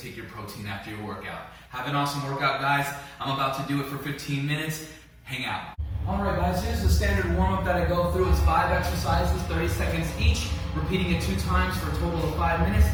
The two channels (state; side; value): identical; both; correlation 1.00